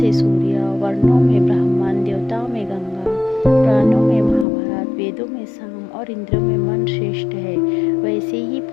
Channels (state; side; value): drops out; right; at 4.5 s